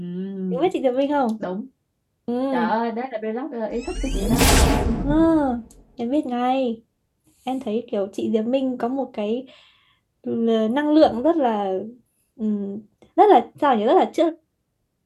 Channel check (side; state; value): both; identical; correlation 1.00